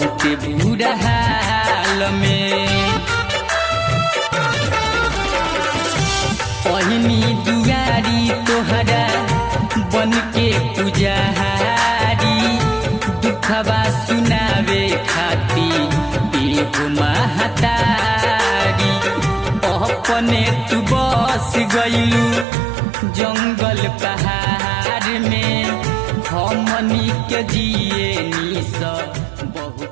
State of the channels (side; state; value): left; drops out; at 22.5 s